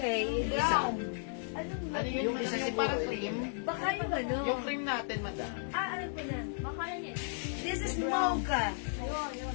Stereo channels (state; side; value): silent; right; digital silence